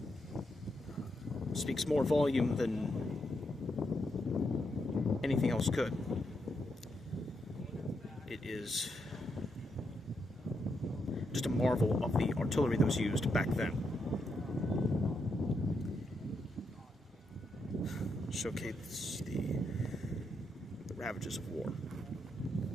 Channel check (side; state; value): both; normal; correlation 0.81